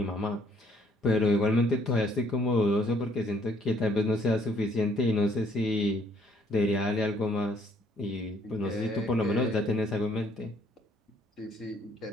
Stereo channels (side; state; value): both; normal; correlation 0.65